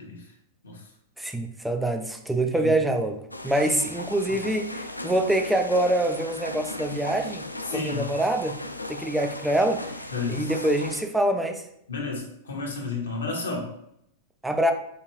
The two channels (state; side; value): normal; both; correlation 0.55